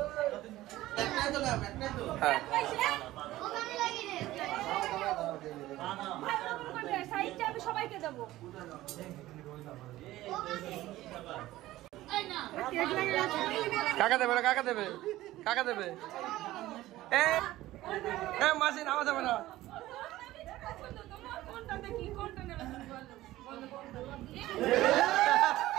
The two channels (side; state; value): left; quieter; 16.1 dB